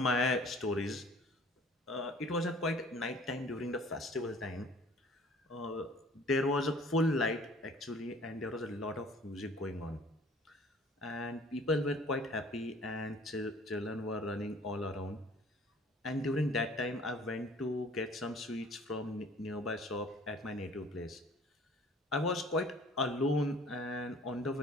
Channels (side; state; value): both; normal; correlation 0.51